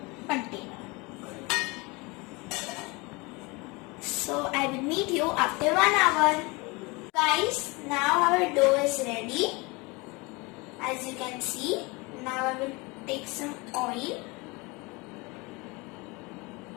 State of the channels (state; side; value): quieter; right; 26.0 dB